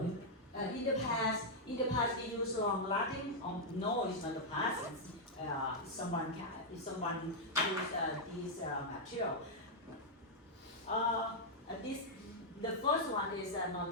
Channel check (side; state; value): both; normal; correlation -0.04